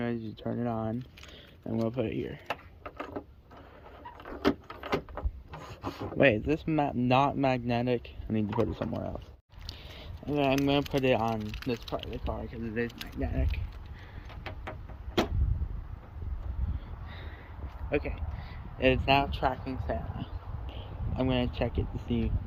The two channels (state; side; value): identical; both; correlation 1.00